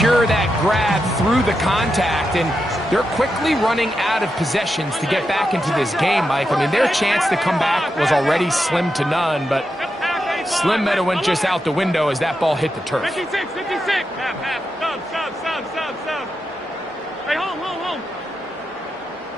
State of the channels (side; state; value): both; normal; correlation 0.87